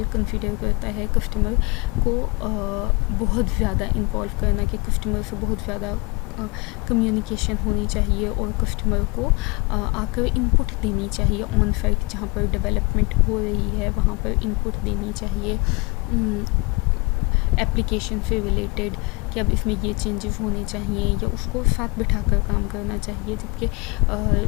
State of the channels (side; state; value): right; quieter; 26.8 dB